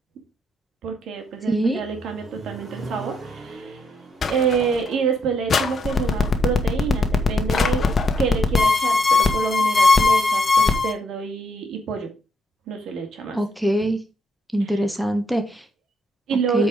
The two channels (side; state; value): both; normal; correlation 0.75